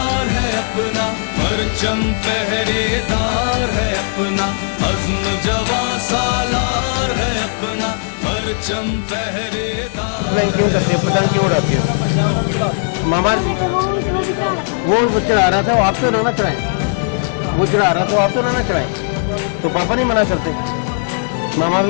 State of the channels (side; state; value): right; silent; digital silence